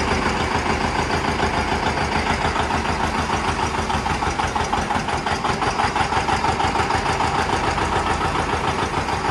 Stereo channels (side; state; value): both; identical; correlation 1.00